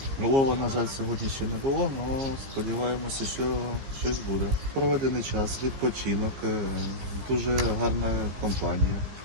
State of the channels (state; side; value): late; left; 15 ms